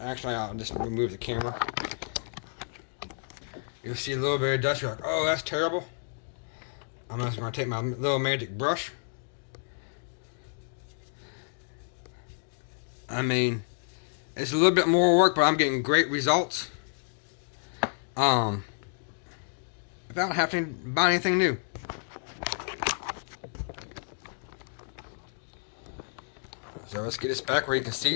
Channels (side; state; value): right; silent; digital silence